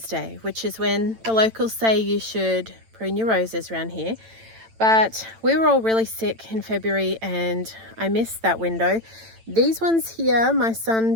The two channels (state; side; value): late; left; 8.9 ms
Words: Day, which is when the locals say you should prune your roses around here. But we were all really sick in February and I missed that window. These ones here, my son